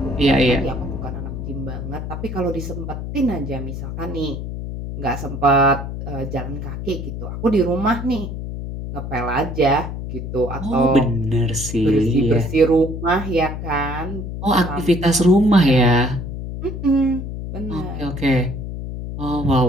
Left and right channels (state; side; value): noise; left; hum, 6 dB below the sound